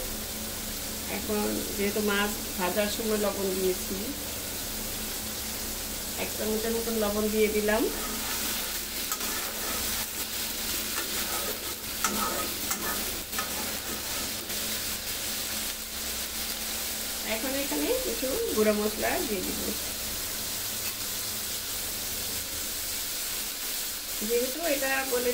এখন যেহেতু মাছ ভাজার সময় লবণ দিয়েছি, 1 চামচের মতন লবণ দিয়ে দিলাম। এখন এখানে কিছু গুঁড়ো মশলা দিয়ে দিব। যেহেতু এটা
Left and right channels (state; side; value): identical; both; correlation 1.00